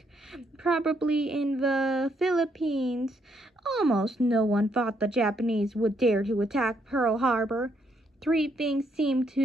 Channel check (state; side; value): normal; both; correlation 0.74